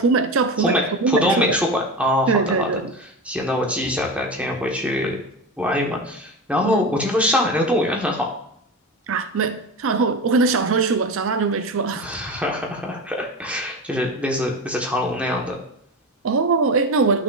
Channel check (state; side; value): normal; both; correlation 0.24